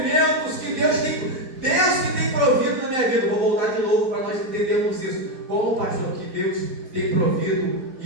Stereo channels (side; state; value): left; late; 4.0 ms